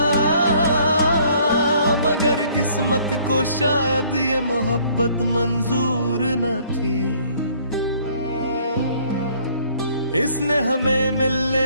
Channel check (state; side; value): inverted; both; correlation -0.60